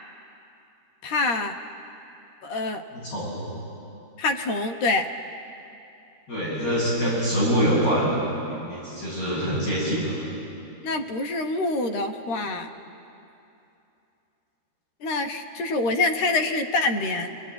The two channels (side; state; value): right; late; 13 ms